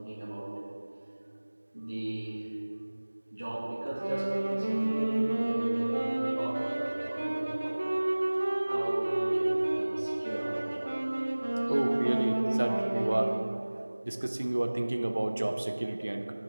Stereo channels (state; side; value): inverted; both; correlation -1.00